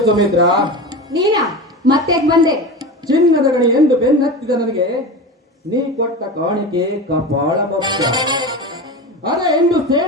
ಸುಮಿತ್ರ? ನೀನಾ ಮತ್ತೆ ಬಂದೆ? ಚಿನ್ನದ ಗಣಿ ಎಂದು ಬೆನ್ನತ್ತಿದ ನನಗೆ ನೀ ಕೊಟ್ಟ ಕಾಣಿಕೆ ಕಪಾಳ ಭಕ್ತ. ಅದೇ ಎಂದು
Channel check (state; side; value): normal; both; correlation 0.27